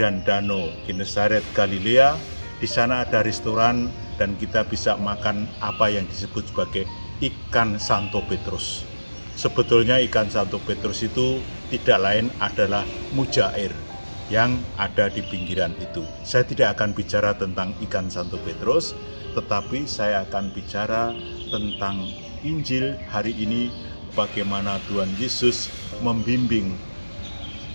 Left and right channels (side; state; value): both; inverted; correlation -1.00